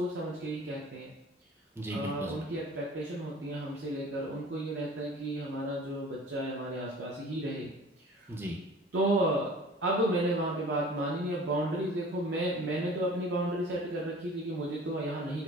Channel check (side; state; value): both; normal; correlation 0.45